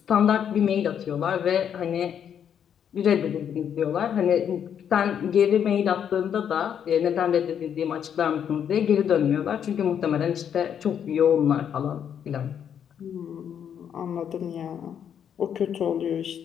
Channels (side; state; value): right; quieter; 8.6 dB